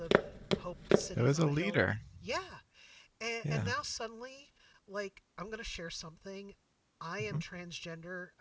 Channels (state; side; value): identical; both; correlation 1.00